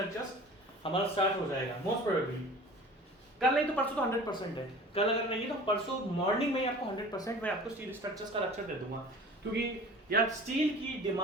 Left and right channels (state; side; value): normal; both; correlation 0.42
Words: हमारा स्टार्ट हो जाएगा मोस्ट प्रोबेबली। कल नहीं तो परसों तो 100% है, कल अगर नहीं तो परसों मॉर्निंग में ही आपको 100% मैं आपको स्टील स्ट्रक्चर्स का लेक्चर दे दूंगा। क्योंकि यार स्टील की